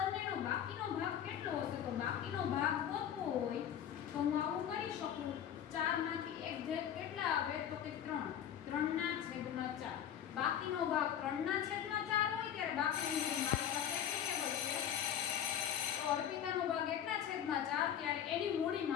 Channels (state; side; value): quieter; right; 9.7 dB